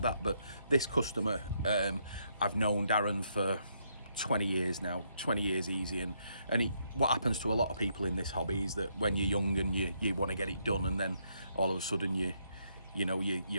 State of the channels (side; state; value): both; inverted; correlation -0.75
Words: that. But this customer, I've known Darren for 20 years now, 20 years easy, and what happens to a lot of people in this hobby is that when you're young and you want to get it done, and then all of a sudden you